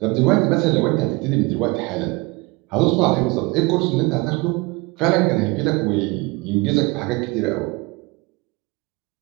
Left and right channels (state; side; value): quieter; left; 25.1 dB